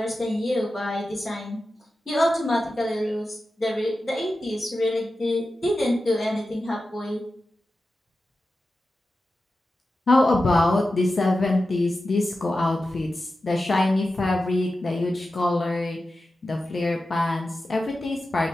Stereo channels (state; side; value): normal; both; correlation 0.92